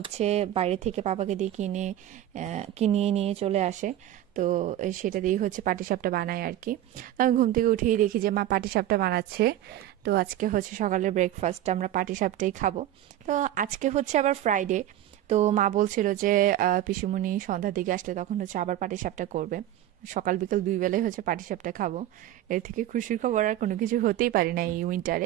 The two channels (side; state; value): left; quieter; 12.8 dB